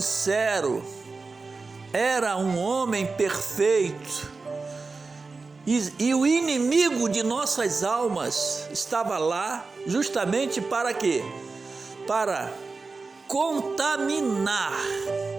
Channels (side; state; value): left; quieter; 4.1 dB